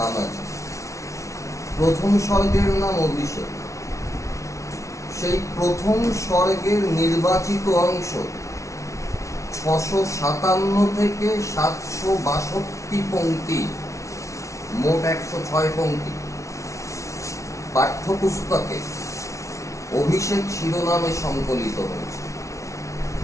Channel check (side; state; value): right; late; 0.14 ms